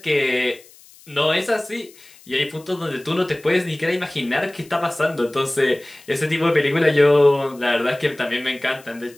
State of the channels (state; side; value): noise; left; hiss, 25 dB below the sound